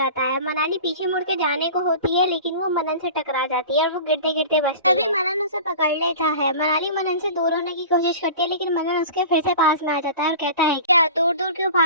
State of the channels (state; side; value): inverted; both; correlation -0.37